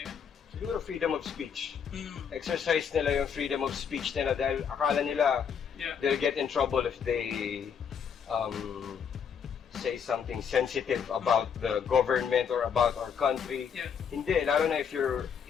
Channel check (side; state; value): right; quieter; 7.2 dB